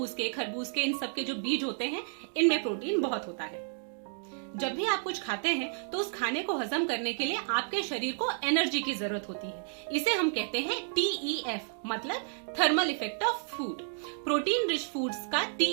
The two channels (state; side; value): silent; left; digital silence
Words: के, खरबूज के, इन सब के जो बीज होते हैं इनमें प्रोटीन बहुत होता है। जब भी आप कुछ खाते हैं तो उस खाने को हजम करने के लिए आपके शरीर को एनर्जी की जरूरत होती है। इसे हम कहते हैं TEF, मतलब thermal effect of food. Protein rich foods का